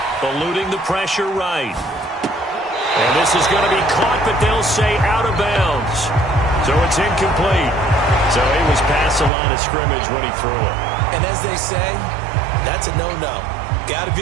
Eluding the pressure right. And this is going to be caught, but they'll say out of bounds. So it's incomplete. So he was past the line of scrimmage when he threw it. And as they say, that's a no-no. Got to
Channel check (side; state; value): left; drops out; at 9.3 s